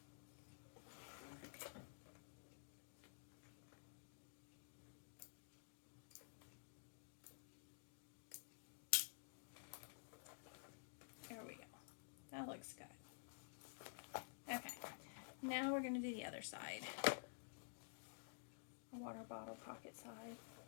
That looks good. Okay, now we're going to do the other side. A water bottle pocket side.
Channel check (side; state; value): right; silent; digital silence